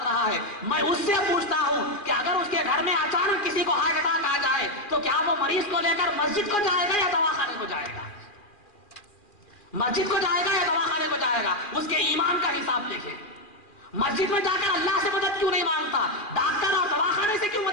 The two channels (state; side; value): late; right; 2.4 ms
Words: رہا ہے، میں اس سے پوچھتا ہوں کہ اگر اس کے گھر میں اچانک کسی کو ہارٹ اٹیک آ جائے تو کیا وہ مریض کو لے کر مسجد کو جائے گا یا دواخانے کو جائے گا؟ مسجد کو جائے گا یا دواخانے کو جائے گا؟ اس کے ایمان کا حساب دیکھیں۔ مسجد میں جا کر اللہ سے مدد کیوں نہیں مانگتا؟ ڈاکٹر اور دواخانے سے کیوں